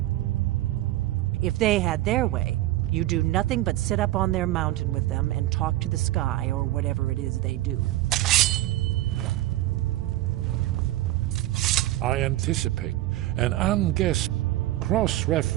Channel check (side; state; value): left; quieter; 15.9 dB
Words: If they had their way, you do nothing but sit up on their mountain with them and talk to the sky or whatever it is they do. I anticipate an unguessed